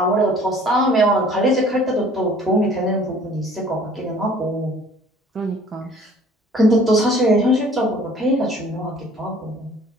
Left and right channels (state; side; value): normal; both; correlation 0.52